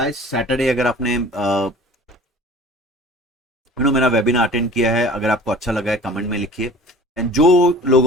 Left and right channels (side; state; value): both; normal; correlation 0.44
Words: Saturday अगर आपने मेरा webinar attend किया है, अगर आपको अच्छा लगा है कमेंट में लिखिए। एंड जो